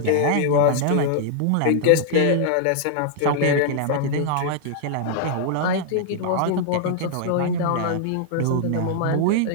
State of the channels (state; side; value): different; both; correlation -0.01